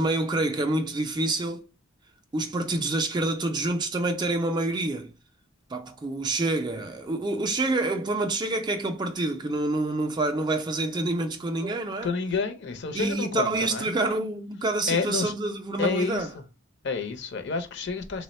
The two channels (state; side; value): normal; both; correlation 0.44